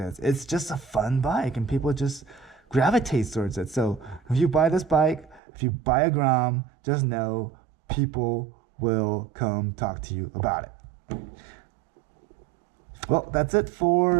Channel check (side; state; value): left; drops out; at 5.4 s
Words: It's just a fun bike and people just gravitate towards it. So if you buy this bike, if you buy a Grom, just know people will come talk to you about it. Well, that's it